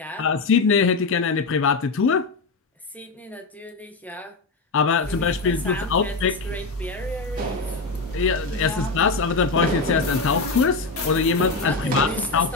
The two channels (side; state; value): right; quieter; 4.0 dB